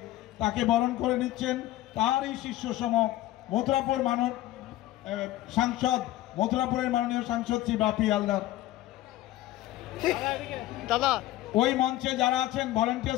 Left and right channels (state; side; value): quieter; right; 15.4 dB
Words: তাকে বরণ করে নিচ্ছেন। তারই শিষ্য সম মথুরাপুর মথুরাপুরের মাননীয় সাংসদ শ্রী বাপি হালদার। দাদা, ওই মঞ্চে যারা আছেন